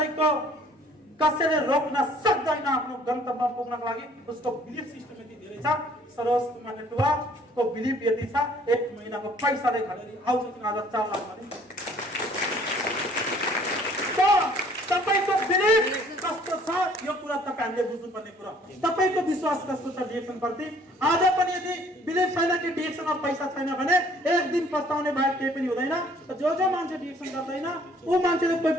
कसैले रोक्न सक्दैन आफ्नो गन्तव्यमा पुग्नको लागि उसको बिलिभ सिस्टम यति धेरै छ सरोज कुमार नेटवाको बिलिभ यति छ एक महिनाको पैसाले घडेरी आउँछ आज 4 लाख भने त तपाईको बिलिभ कस्तो छ यो कुरा तपाईहरुले बुझ्नु पर्ने कुरा तपाईको विश्वास कस्तो छ डिएक्सन प्रति आज पनि यदि बिलिभ छैन कि डिएक्सनमा पैसा छैन भने एक दिन पस्ताउने बाहेक केही पनि हुँदैन जो मान्छे डिएक्सन गर्दैन उ मान्छेले कोही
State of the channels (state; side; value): normal; both; correlation 0.58